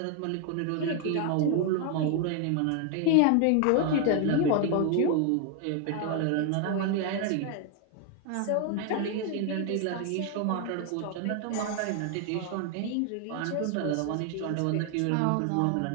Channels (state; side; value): different; both; correlation 0.00